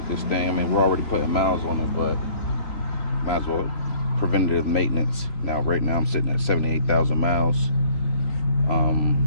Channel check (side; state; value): right; late; 3.0 ms